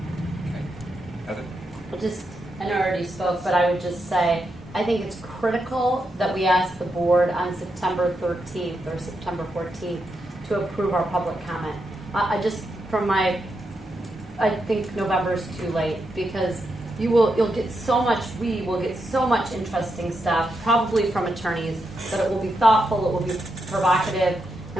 Well, I know I already spoke, but I would just say, I think it's critical that we ask the board on September 13th or September 14th to approve our public comment. I think November is too late, because you'll get so much, we will get so much interesting stuff, probably from attorneys, that it will be thoughtful, it will be provocative,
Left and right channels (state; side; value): normal; both; correlation 0.84